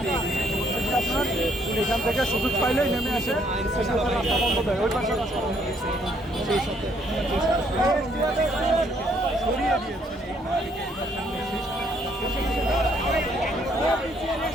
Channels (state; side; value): normal; both; correlation 0.68